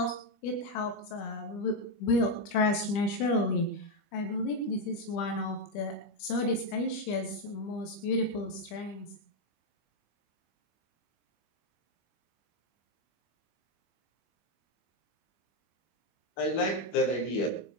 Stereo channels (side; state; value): right; late; 25 ms